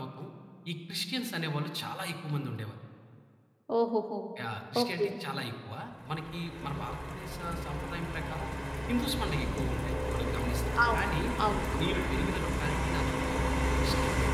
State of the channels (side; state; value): both; identical; correlation 1.00